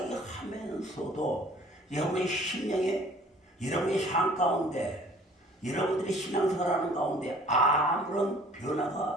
하면서도 여러분의 심령에 여러분의 삶 가운데 여러분들이 신앙생활하는 가운데 아무런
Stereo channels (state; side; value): normal; both; correlation 0.53